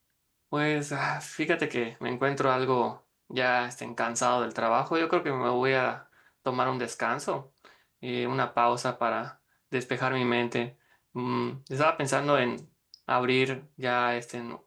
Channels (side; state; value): both; identical; correlation 1.00